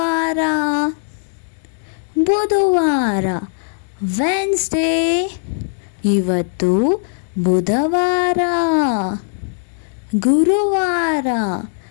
ಬುಧವಾರ ವೆನ್ಸ್ಡೇ. ಇವತ್ತು ಬುಧವಾರ. ಗುರುವಾರ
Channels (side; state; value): right; silent; 67 dB below the other